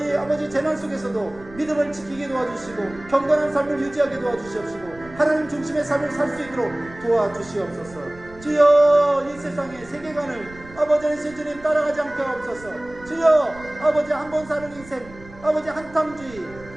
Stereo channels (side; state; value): right; noise; rumble, 20 dB below the sound